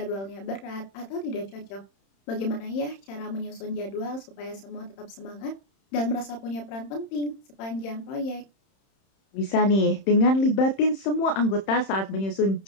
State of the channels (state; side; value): late; right; 31 ms